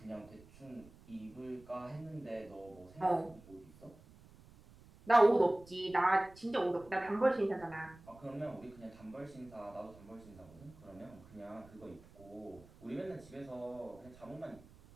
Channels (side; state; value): right; noise; rumble, 22 dB below the sound